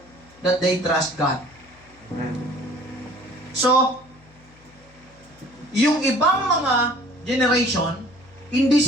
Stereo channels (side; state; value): left; noise; hum, 27 dB below the sound